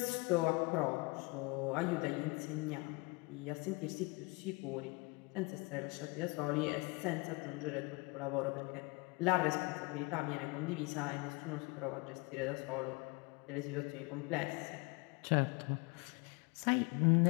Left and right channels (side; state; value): right; quieter; 27.8 dB